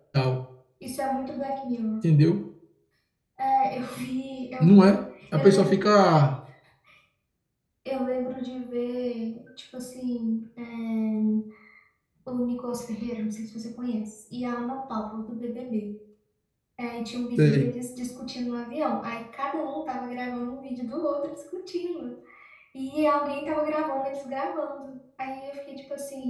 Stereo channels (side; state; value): both; identical; correlation 1.00